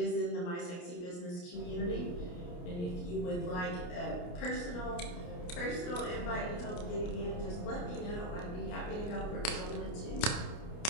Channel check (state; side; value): late; right; 28 ms